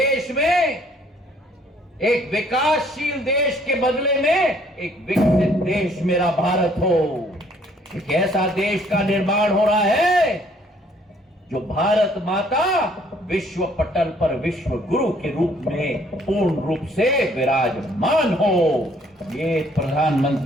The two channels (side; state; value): both; normal; correlation 0.62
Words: में एक विकासशील देश के बदले में एक विकसित देश मेरा भारत हो। एक ऐसा देश का निर्माण हो रहा है जो भारत माता विश्व पटल पर विश्व गुरु के रूप में पूर्ण रूप से विराजमान हो। ये